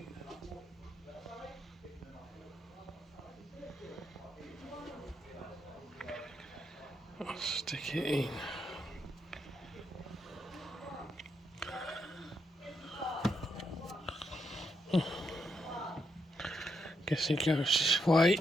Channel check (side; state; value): both; normal; correlation 0.81